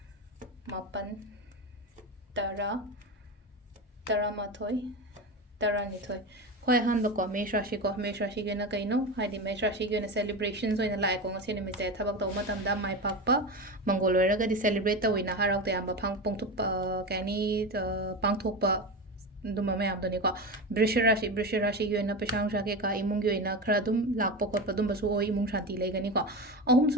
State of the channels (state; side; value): normal; both; correlation 0.22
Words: mapan tara taramathoi taranithoi Hoi han ba ko mesh rashi ge na kaino haidi mesh rashi ge na celebrations oina lai ko ngasi ni mi se thabak to matam da mai pak pa mongol ra ga di celebrate to ina harau te am ba phang pong thup kani pang thok pa duma me am do ni ko brish rashi ge na pesang sha ke ka imung ge na khra dum lak pa khot pa dum ba su oi imung shanti lai ga ni ko ahum